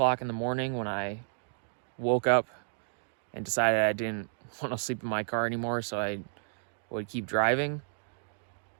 in the morning, when I woke up and decided I didn't want to sleep in my car anymore, so I would keep driving,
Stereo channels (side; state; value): left; silent; digital silence